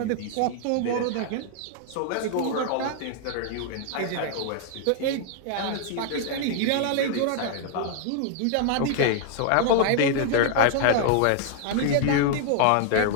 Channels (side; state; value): both; different; correlation 0.00